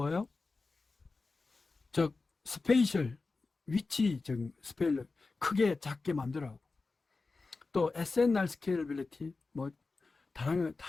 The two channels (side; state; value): right; quieter; 3.9 dB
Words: 스페이셜 위치적 스페일러 크게 작게 만들어하고 또 SNR 스케일러빌리티 다양한